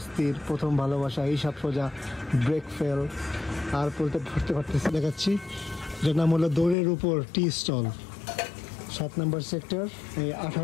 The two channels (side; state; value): right; drops out; at 6.8 s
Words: প্রথম ভালোবাসা, এইসব সোজা, ব্রেক ফেল, আর পড়তে পারতেছি দেখাচ্ছি। যার নাম হলো দৌড়ের উপর টি স্টল, 7 নম্বর সেক্টর, এই